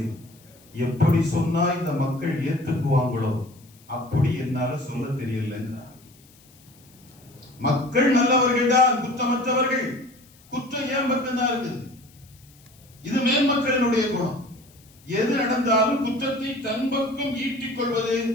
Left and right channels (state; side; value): noise; left; hiss, 27 dB below the sound